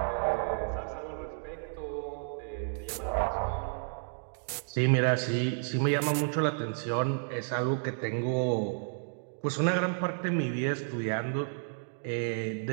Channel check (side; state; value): left; silent; digital silence